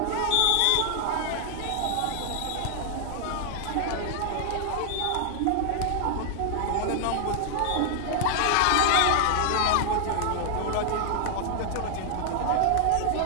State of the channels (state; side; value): different; both; correlation -0.01